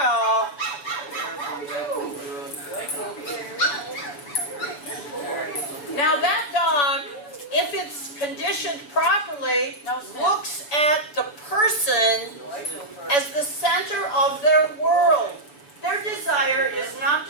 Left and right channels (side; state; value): right; late; 6.9 ms